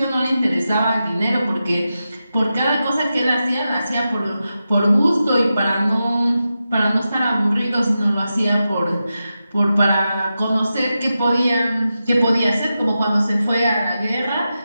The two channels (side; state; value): both; inverted; correlation -0.90